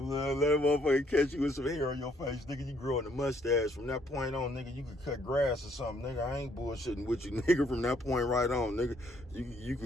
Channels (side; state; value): both; normal; correlation 0.68